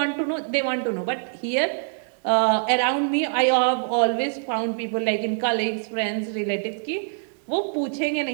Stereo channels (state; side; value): silent; left; digital silence